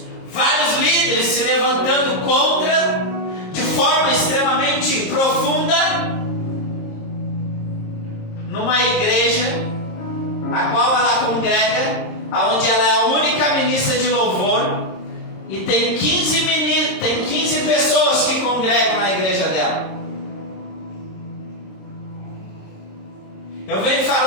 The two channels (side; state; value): right; late; 26 ms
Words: vários líderes se levantando contra, de forma extremamente profunda, numa igreja a qual ela congrega, aonde ela é a única ministra de louvor, e tem 15 pessoas que congregam na igreja dela. Eu venho